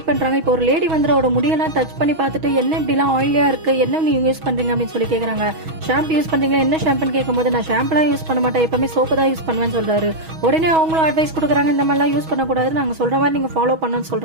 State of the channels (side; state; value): left; late; 6.3 ms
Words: பண்றாங்க. இப்போ ஒரு லேடி வந்து அவரோட முடியெல்லாம் டச் பண்ணி பார்த்துட்டு என்ன இப்படிலாம் ஆயிலியா இருக்கு, என்ன நீங்க யூஸ் பண்றீங்க அப்படின்னு சொல்லி கேக்குறாங்க. ஷாம்பு யூஸ் பண்றீங்களா, என்ன ஷாம்புன்னு கேட்கும்போது நான் ஷாம்புலாம் யூஸ் பண்ண மாட்டேன், எப்பவுமே சோப்பு தான் யூஸ் பண்ணுவேன்னு சொல்றாரு. உடனே அவங்களும் அட்வைஸ் கொடுக்குறாங்க, இந்த மாதிரிலாம் யூஸ் பண்ணக்கூடாது, நாங்க சொல்ற மாதிரி நீங்க ஃபாலோ பண்ணணும்னு